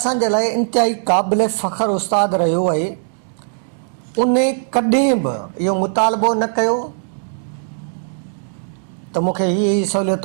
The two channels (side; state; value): left; silent; digital silence